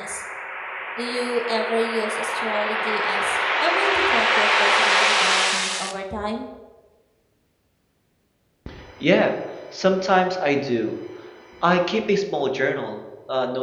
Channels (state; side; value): identical; both; correlation 1.00